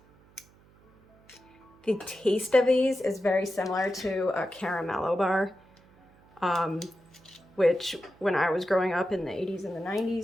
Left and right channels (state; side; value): noise; right; hum, 29 dB below the sound